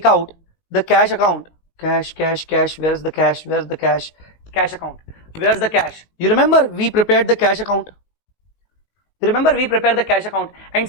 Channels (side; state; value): right; late; 19 ms